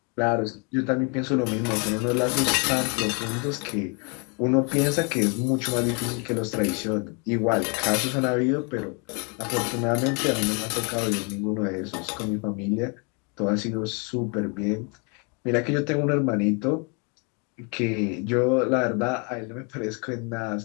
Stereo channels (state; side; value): quieter; right; 34.4 dB